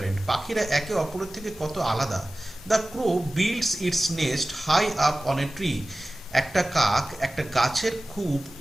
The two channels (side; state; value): both; normal; correlation 0.97